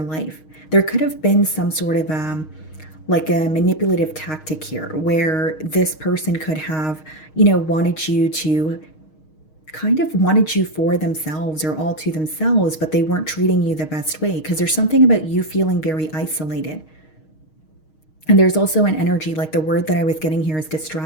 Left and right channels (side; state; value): right; late; 6.4 ms